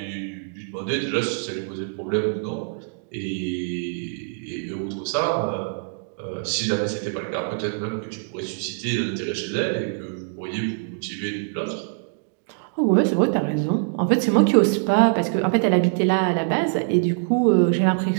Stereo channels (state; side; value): silent; left; digital silence